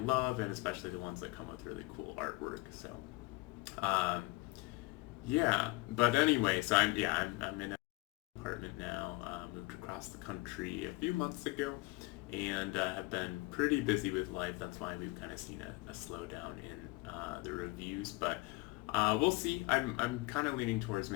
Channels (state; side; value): quieter; right; 23.8 dB